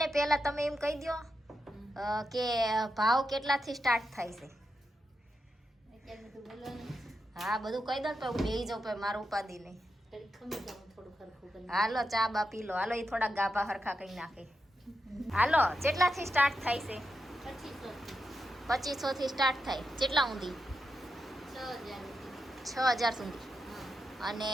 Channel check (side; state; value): both; normal; correlation 0.87